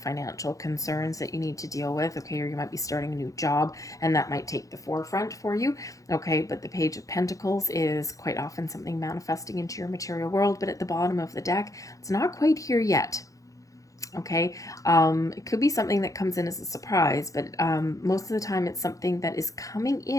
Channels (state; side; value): late; right; 0.16 ms